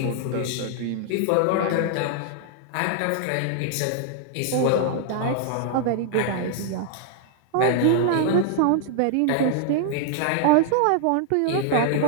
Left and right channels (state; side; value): different; both; correlation -0.01